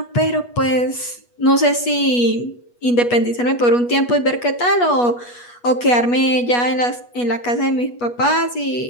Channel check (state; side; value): late; right; 8.3 ms